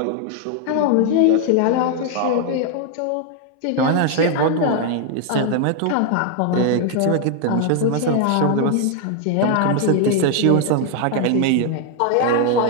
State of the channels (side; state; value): both; different; correlation 0.00